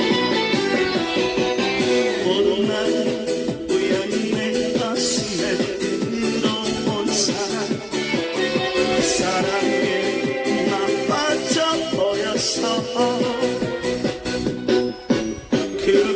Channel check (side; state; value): both; identical; correlation 1.00